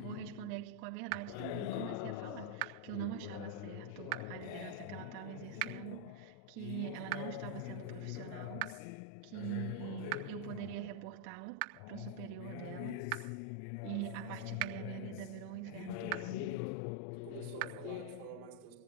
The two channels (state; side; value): different; both; correlation 0.00